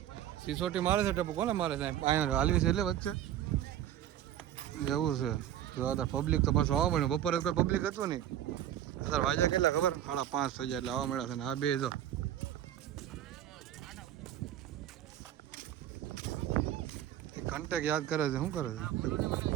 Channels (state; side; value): quieter; left; 11.6 dB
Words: સિસોટી મારે છે ટપુ કોને મારે સાહેબ અહીંયા હાલવી છે એટલે વચ્ચે એવું છે જો અત્યારે પબ્લિક તો પાછું આવવા મળ્યું બપોરે કોઈ પબ્લિક હતું નહીં અત્યારે વાગ્યા કેટલા ખબર 5:30 થઈ જાય એટલે આવવા મળ્યા છે ને આ બે જો કન્ટેક્ટ યાદ કરે છે શું કરે છે